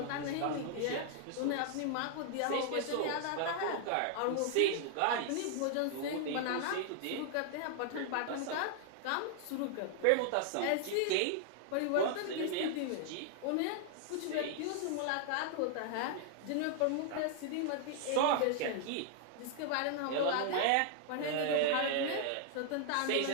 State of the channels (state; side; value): different; both; correlation 0.00